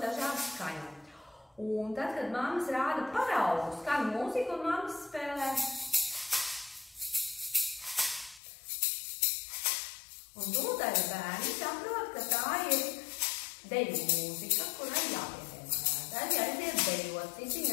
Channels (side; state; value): right; drops out; at 8.4 s